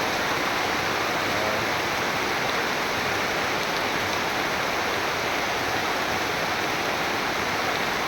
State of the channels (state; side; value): identical; both; correlation 1.00